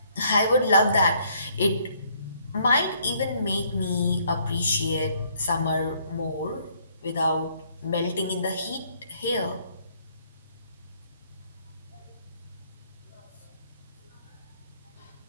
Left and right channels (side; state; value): both; inverted; correlation -0.66